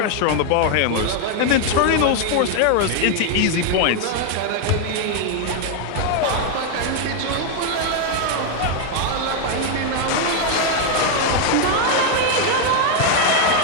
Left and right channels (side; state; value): both; different; correlation 0.01